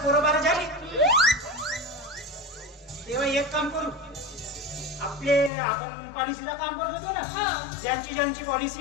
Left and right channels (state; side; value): drops out; right; at 5.5 s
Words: पोरं बारा झाली तेव्हा एक काम करू आपण पॉलिसीचं काम करत होतो ना ज्यांची